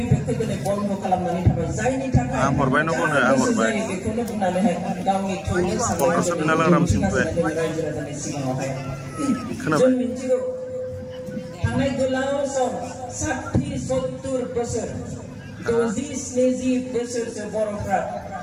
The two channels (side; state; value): both; identical; correlation 1.00